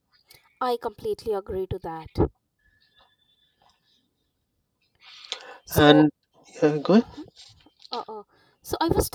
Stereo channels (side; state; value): both; identical; correlation 1.00